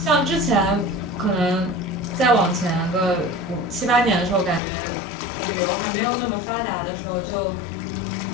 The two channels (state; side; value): drops out; right; at 4.6 s